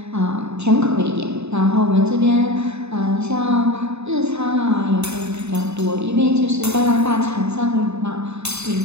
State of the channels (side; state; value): left; late; 0.81 ms